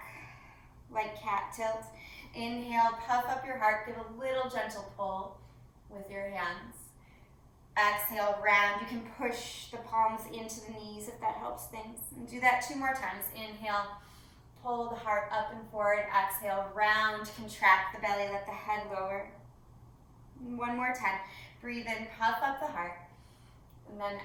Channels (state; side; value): identical; both; correlation 1.00